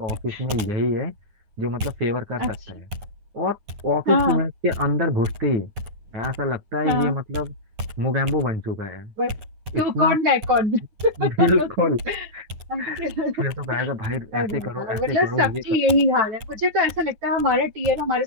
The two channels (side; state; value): left; late; 9.7 ms